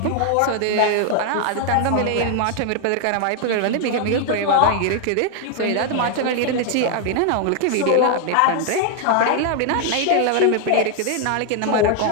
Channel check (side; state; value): both; different; correlation 0.00